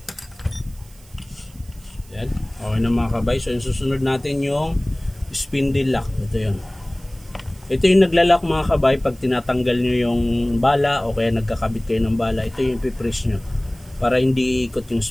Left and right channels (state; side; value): noise; right; hiss, 26 dB below the sound